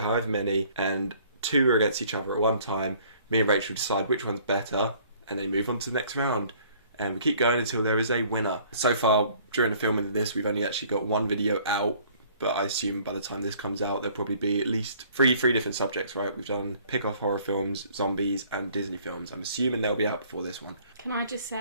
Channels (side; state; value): both; inverted; correlation -0.57